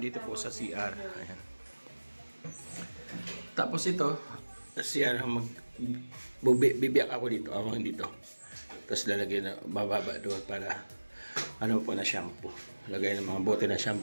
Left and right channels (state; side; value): inverted; both; correlation -1.00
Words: dito po sa CR. Ayan. Tapos ito, CR, bibiyak ako dito, awang dito. Tapos lalagyan na bababa doon para ano po na shampoo. Lagay ng mga bote na